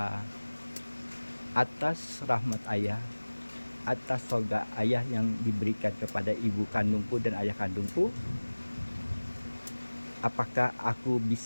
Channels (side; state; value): both; inverted; correlation -1.00